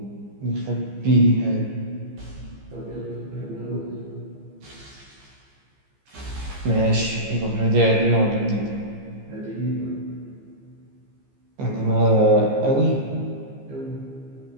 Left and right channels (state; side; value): late; left; 15 ms